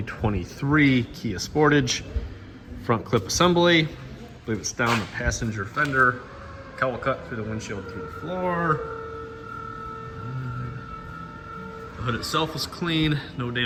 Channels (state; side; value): identical; both; correlation 1.00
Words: Kia Sportage. Front clip assembly. I believe it's down the passenger fender. Cowl cut through the windshield through the floor. The hood itself is clean, no